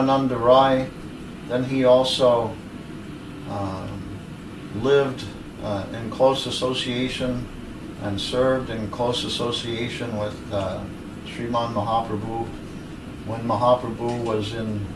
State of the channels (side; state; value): both; identical; correlation 1.00